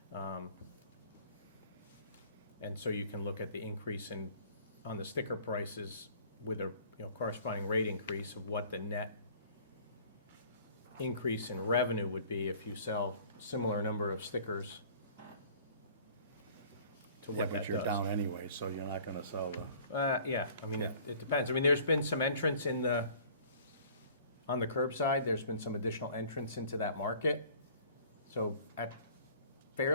and so you can look at the increase on the sticker prices with a corresponding rate increase of what the net increase in revenue would be if you sell similar number of stickers to Yeah, what but that you're does. down anyway, so you're not gonna sell the, Yeah, I mean, it depends. I mean, there's been some entrance on the curbside, there's been some additional entrance into that market. So at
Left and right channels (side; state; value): both; inverted; correlation -0.51